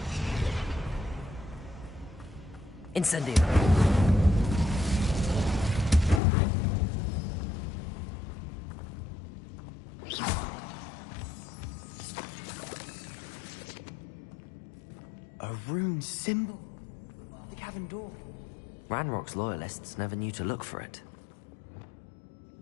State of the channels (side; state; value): right; drops out; at 6.2 s